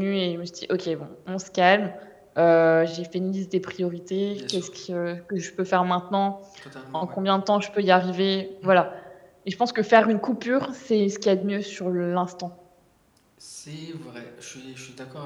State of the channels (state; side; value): identical; both; correlation 1.00